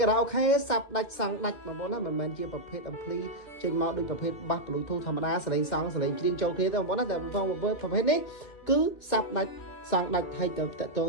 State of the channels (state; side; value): late; right; 2.4 ms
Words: ារ៉ាអូខេសាប់ដាច់សងដាច់បងប្អូនណាមិនមែនជាប្រភេទអំភ្លីចេញមកដូចប្រភេទបាស Bluetooth ធម្មតាសលេងសងសលេងជ្រៀងចូលគ្នាទេបងប្អូនណាតែប្រភេទនេះគឺសាប់ដាច់សងដាច់ហើយទៅតទៅ